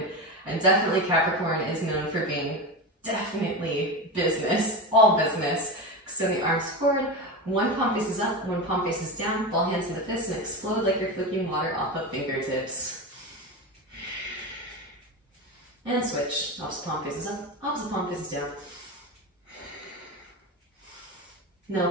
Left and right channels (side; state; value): both; normal; correlation 0.21